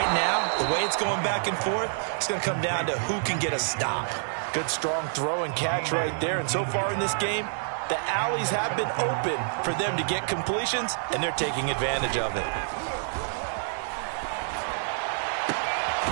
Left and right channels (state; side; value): silent; left; 60 dB below the other